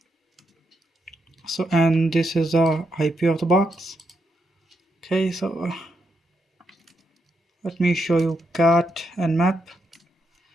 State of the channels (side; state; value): both; normal; correlation 0.81